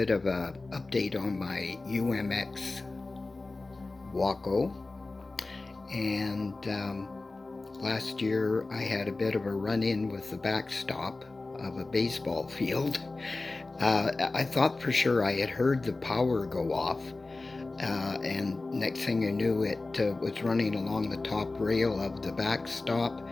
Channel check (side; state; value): right; quieter; 3.3 dB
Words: of a update on my Umx Waco. And last year I had a bit of a run-in with the backstop of a baseball field. I thought for sure I had heard the power go off, and next thing I knew, it was running along the top rail of the backstop,